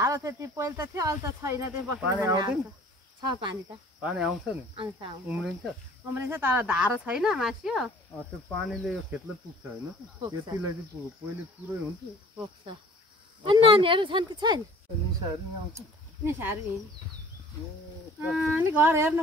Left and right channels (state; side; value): normal; both; correlation 0.50